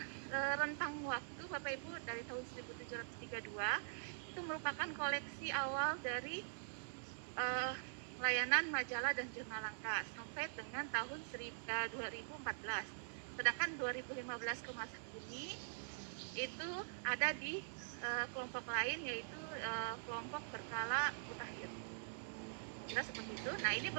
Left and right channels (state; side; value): silent; left; digital silence